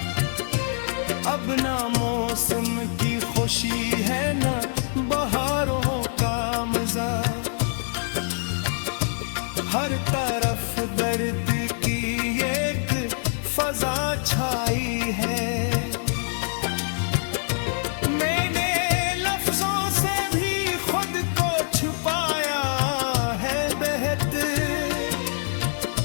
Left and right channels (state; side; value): silent; right; 62 dB below the other